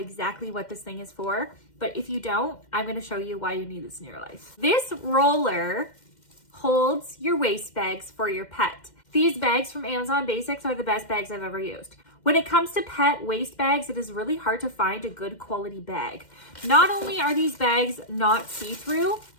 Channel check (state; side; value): late; right; 2.1 ms